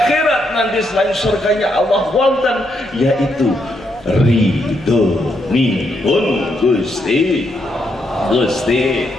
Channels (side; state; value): left; noise; hum, 29 dB below the sound